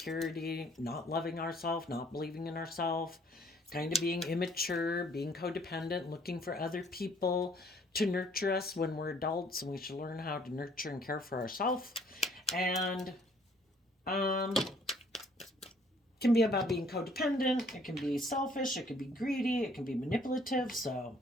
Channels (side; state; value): both; normal; correlation 0.61